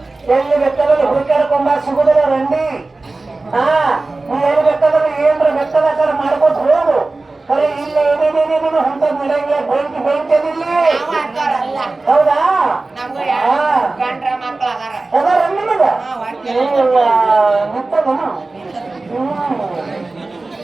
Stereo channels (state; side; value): quieter; left; 3.3 dB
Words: ಎಲ್ಲಿ ಬೇಕಾದ್ರೆ ಹುಡುಕಾಡ್ಕೊಂಬ ಸಿಗುದಿಲ್ಲ ರಂಡಿ ನೀ ಎಲ್ಲಿ ಬೇಕಾದ್ರೆ ಏನ್ರ ಬೇಕಾದ ಮಾಡ್ಕೊತ ಹೋಗು ಕರೆ ಇಲ್ಲ ಏನೇನೇನೇನು ಅಂತ ನಡೆಯಂಗಿಲ್ಲ ಬೆಂಕಿ ಇಲ್ಲಿ ಹೌದಾ ನಿಂತದನು